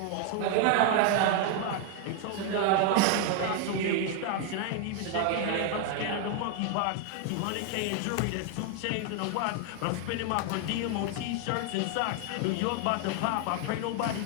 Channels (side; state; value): both; different; correlation 0.01